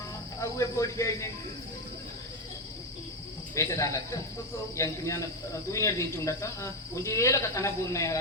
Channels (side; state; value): both; normal; correlation 0.09